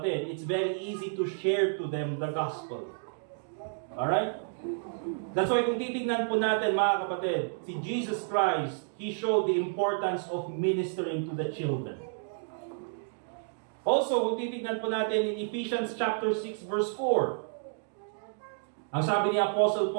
it's very easy to share to them the gospel. Alright? That's why kung titignan po natin, mga kapatid, si Jesus Christ, He showed the importance of ministering to the children. Also, kung titignan po natin in Ephesians chapter 6, verse 4, ang sabi ni Apostle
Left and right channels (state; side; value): silent; left; digital silence